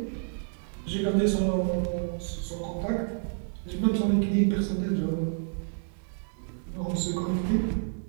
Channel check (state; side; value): silent; left; digital silence